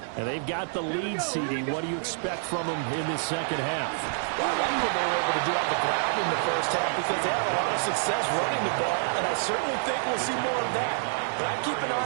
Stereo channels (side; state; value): left; silent; 60 dB below the other